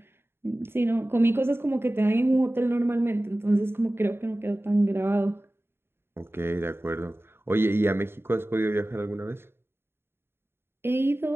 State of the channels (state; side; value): late; left; 0.11 ms